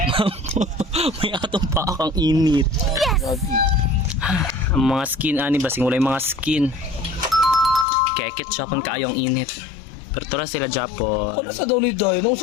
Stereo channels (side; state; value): right; drops out; at 7.9 s